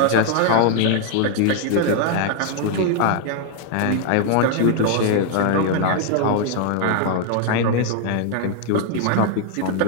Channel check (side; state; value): both; different; correlation 0.00